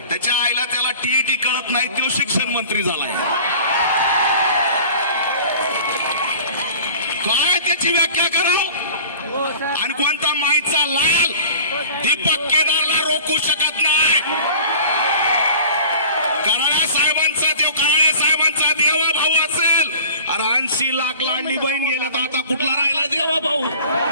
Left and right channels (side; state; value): both; inverted; correlation -0.43